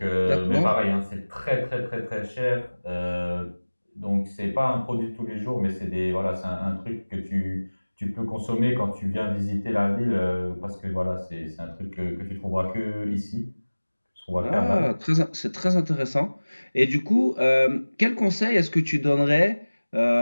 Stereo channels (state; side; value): inverted; both; correlation -1.00